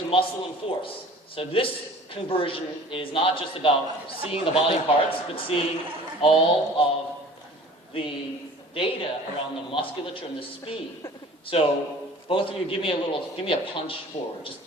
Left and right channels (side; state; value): both; normal; correlation 0.45